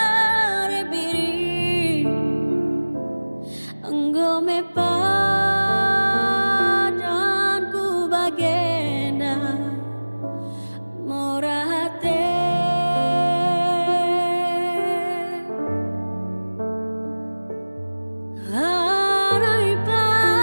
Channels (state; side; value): inverted; both; correlation -1.00